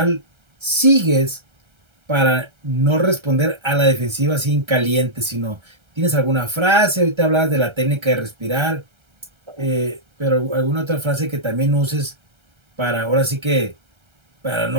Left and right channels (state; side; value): late; left; 1.3 ms